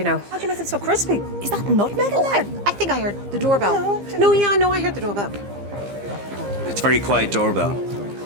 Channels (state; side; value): late; left; 15 ms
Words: know. How do you make it so crispy? Is that nutmeg in there? I think I heard the doorbell. No, I heard the doorbell. It's a very quiet doorbell.